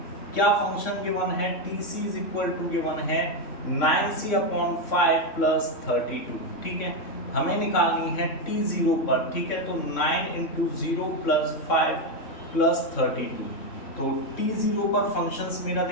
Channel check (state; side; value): late; right; 3.6 ms